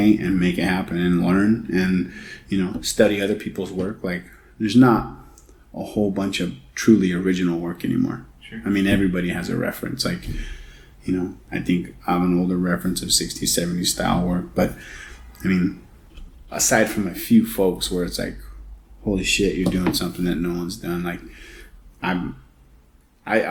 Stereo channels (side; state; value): both; identical; correlation 1.00